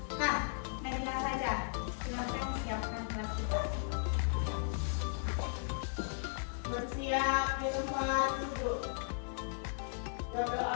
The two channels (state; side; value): silent; right; digital silence